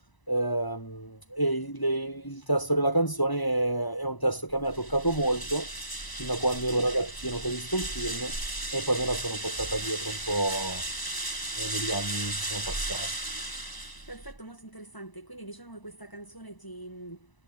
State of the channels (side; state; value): right; late; 1.0 ms